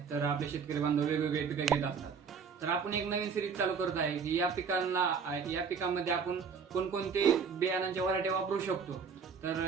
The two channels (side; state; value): left; quieter; 6.0 dB